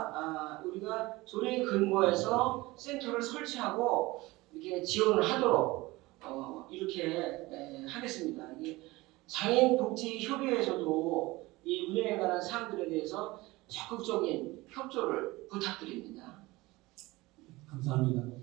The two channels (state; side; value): quieter; left; 20.7 dB